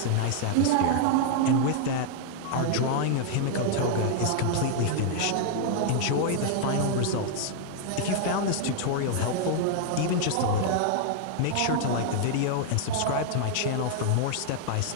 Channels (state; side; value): different; both; correlation -0.01